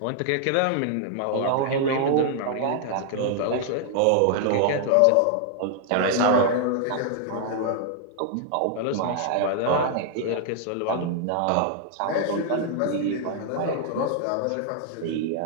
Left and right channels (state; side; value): different; both; correlation 0.00